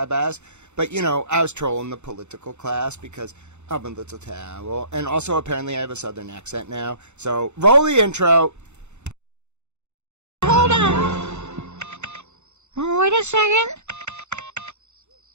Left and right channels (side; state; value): left; late; 0.83 ms